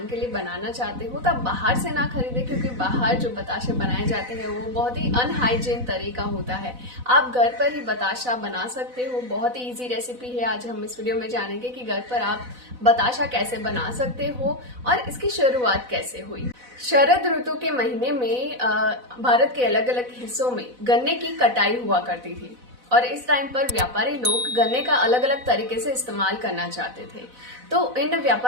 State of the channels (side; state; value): left; late; 4.0 ms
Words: के लिए बनाना चाहते हो तो आप बाहर से ना खरीदें, क्योंकि बाहर जो बताशे बनाए जाते हैं वो बहुत ही अनहाइजीन तरीका होता है। आप घर पर ही बताशा बना सकते हो। बहुत ही इजी रेसिपी है। आज हम इस वीडियो में जानेंगे कि घर पर आप बताशा कैसे बना सकते हो और इसकी शुरुआत कैसे हुई। शरद ऋतु के महीने में भारत के अलग अलग हिस्सों में गन्ने की कटाई हुआ करती थी और इस टाइम पर व्यापारी लोग गन्ने का अलग अलग तरीके से इस्तेमाल करना चाहते थे। तो इन